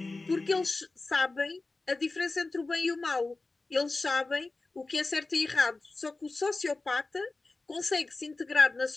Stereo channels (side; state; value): right; quieter; 3.4 dB